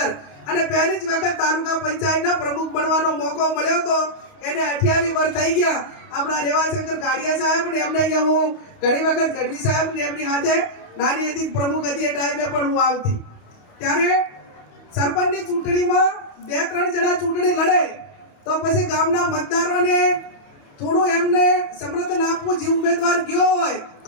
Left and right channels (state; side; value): late; right; 28 ms